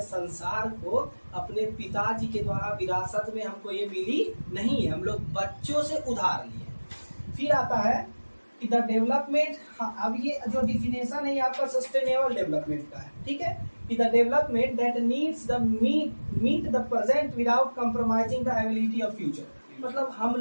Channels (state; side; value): inverted; both; correlation -1.00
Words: संसार को अपने पिताजी के द्वारा विरासत में हमको ये मिली नहीं है, हम लोग बच्चों से उधार लिए। फिर आता है कि द डेवलपमेंट, अब ये जो डिफिनेशन है आपका सस्टेनेबल डेवलपमेंट का है, ठीक है, कि the development that needs the meet the present without compromising the ability of future. मतलब हम